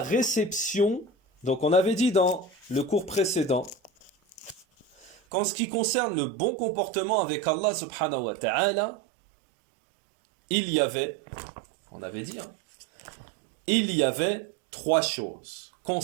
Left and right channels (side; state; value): left; drops out; at 5.2 s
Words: réception, donc on avait dit dans le cours précédent qu'en ce qui concerne le bon comportement avec Allah subhanahu wa ta'ala, il y avait, on avait dit, il y avait trois choses